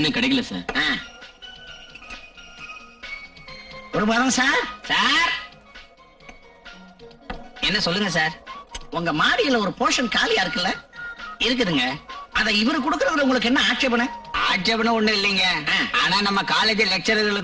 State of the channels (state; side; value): identical; both; correlation 1.00